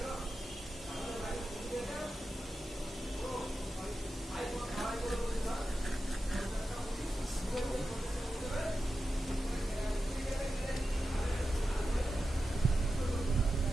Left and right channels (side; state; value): both; normal; correlation 0.91